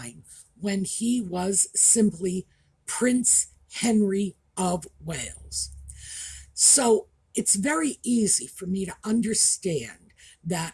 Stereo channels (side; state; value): both; identical; correlation 1.00